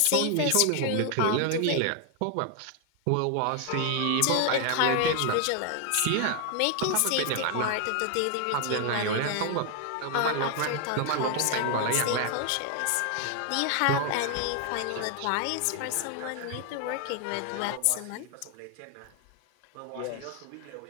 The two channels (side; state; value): both; different; correlation 0.00